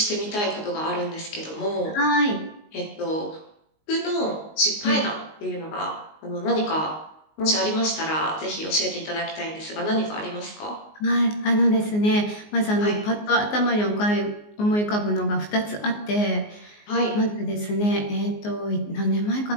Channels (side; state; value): right; late; 19 ms